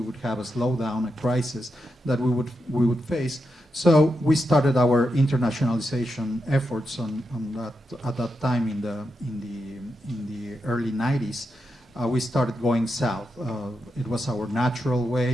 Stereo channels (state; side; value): normal; both; correlation 0.86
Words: have a slowdown, a crisis that we would face. So we started our internationalization efforts at that time in the early 90s. We started going south. It was our natural